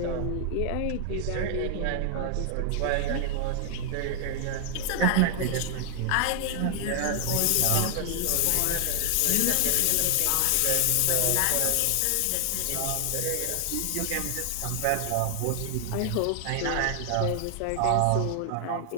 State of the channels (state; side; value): different; both; correlation 0.00